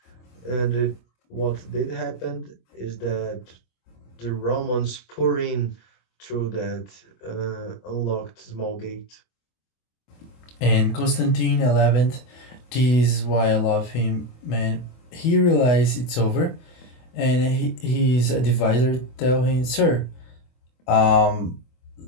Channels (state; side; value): late; right; 24 ms